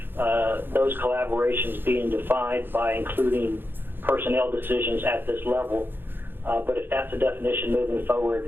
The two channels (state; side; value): late; left; 0.099 ms